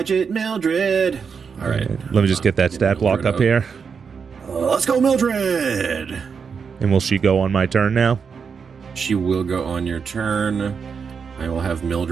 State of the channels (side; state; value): left; quieter; 6.0 dB